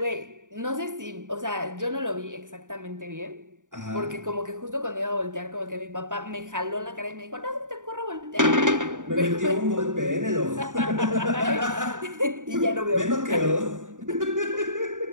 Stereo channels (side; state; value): left; late; 0.87 ms